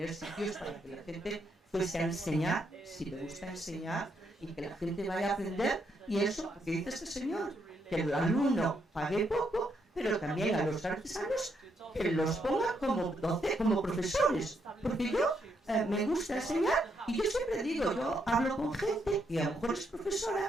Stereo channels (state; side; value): normal; both; correlation 0.77